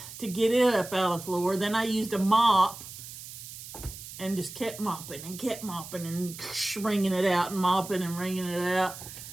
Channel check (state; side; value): noise; right; hiss, 13 dB below the sound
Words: to get it up out of the floor. Then I used a mop and just kept mopping and wringing it out and mopping and wringing it out.